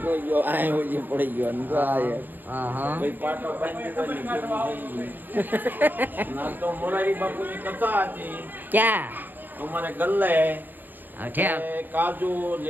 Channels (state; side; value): late; left; 0.088 ms